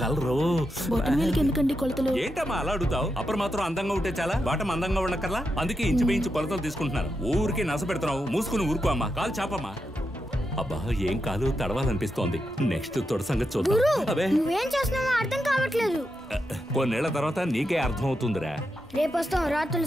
కలరు. ఎందుకండి కొలతలు? ఏంటమ్మా అలా అడుగుతావు? అప్పుడు మాత్రం అందంగా ఉంటే చాలా, బాటం అందంగా ఉండకర్లా. అందుకే ఇంచు కొలతలు తీసుకుంటున్నారు. ఊరికే నస పెడుతున్నావు. మూసుకుని ఊరుకో అమ్మా. కాలు చాపమ్మా. అబ్బా ఏం కాలు తడవాలనిపిస్తోంది. నెక్స్ట్ తొడ సంగతి చూద్దాం. నువ్వేం చేస్తున్నావో అర్థం కావట్లేదు. కొన్నేళ్ల తర్వాత నీకే అర్థం అవుతుందిరా. రేపు వస్తాం రా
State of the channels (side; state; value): both; normal; correlation 0.86